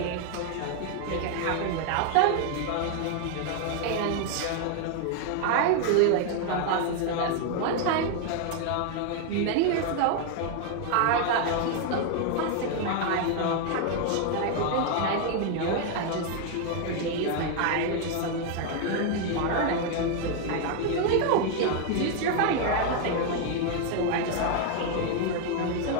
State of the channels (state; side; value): different; both; correlation 0.00